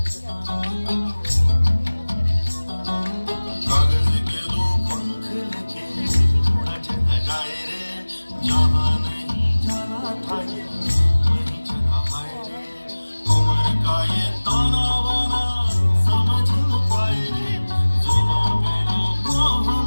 कागज के दो पंख लेके उड़ा चला जाए रे, जहाँ नहीं जाना था ये वहीं चला हाय रे। उम्र का ये ताना बाना समझ न पाए रे, जुबां पे जो मोह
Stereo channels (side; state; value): both; inverted; correlation -1.00